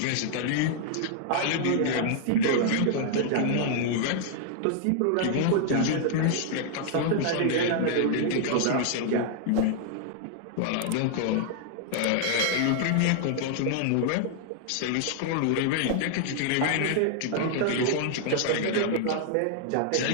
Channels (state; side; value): different; both; correlation -0.01